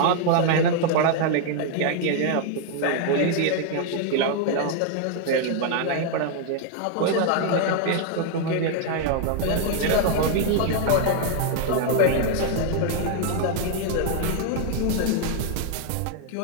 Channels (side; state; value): both; different; correlation 0.00